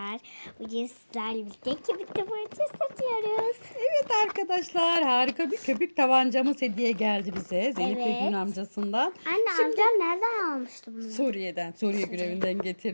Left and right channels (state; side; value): inverted; both; correlation -1.00